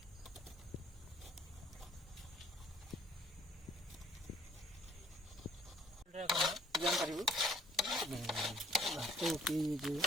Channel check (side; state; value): both; normal; correlation 0.60